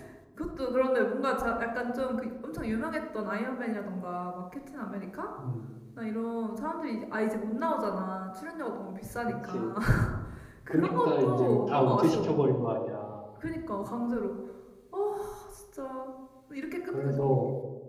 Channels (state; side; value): identical; both; correlation 1.00